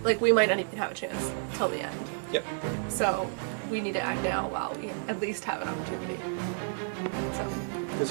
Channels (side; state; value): left; silent; 57 dB below the other